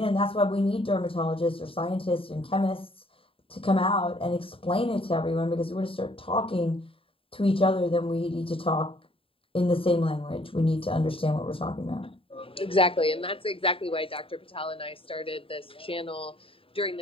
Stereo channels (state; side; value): late; right; 0.27 ms